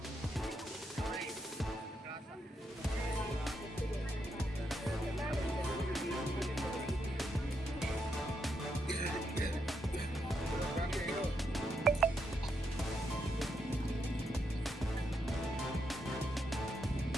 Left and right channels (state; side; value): normal; both; correlation 0.81